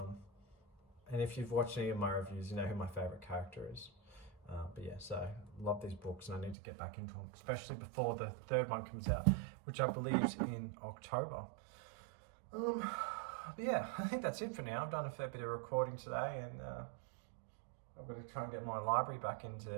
And if you've watched any of my reviews, you know who my favorite character is. But yeah, so love these books, and I need to get back into them, especially before the 3rd one comes out, which I believe is in October. But yeah, I think that's it for now. I've done a fair bit of recording today, and I've got to try and get my library back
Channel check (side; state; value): left; drops out; at 6.6 s